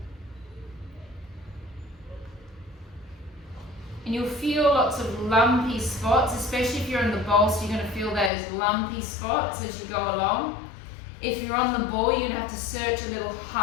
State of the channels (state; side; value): drops out; right; at 8.3 s